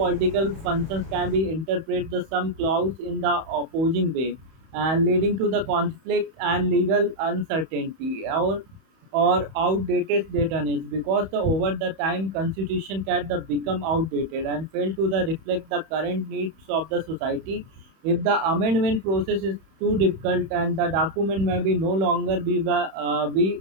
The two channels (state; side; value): late; left; 31 ms